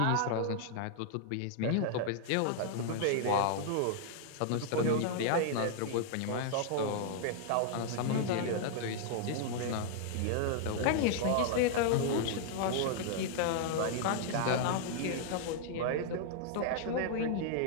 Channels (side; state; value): both; different; correlation -0.01